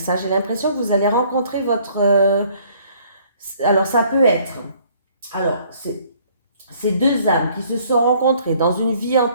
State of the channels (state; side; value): inverted; both; correlation -0.60